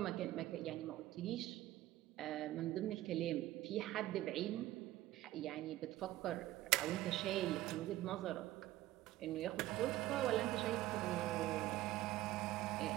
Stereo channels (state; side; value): quieter; left; 15.6 dB